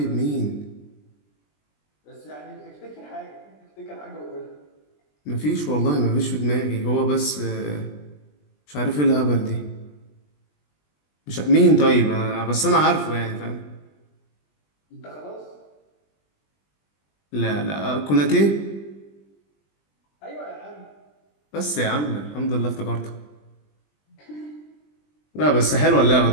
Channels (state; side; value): late; right; 20 ms